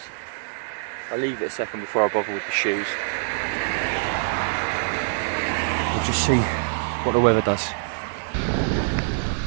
I'll leave it a second before I bother with the shoes. We'll just see what the weather does.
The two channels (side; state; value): left; silent; digital silence